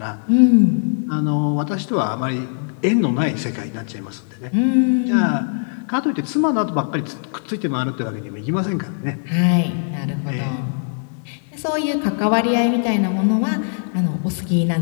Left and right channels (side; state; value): right; silent; 59 dB below the other